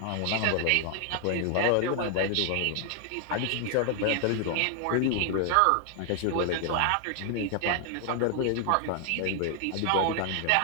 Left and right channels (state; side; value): different; both; correlation 0.00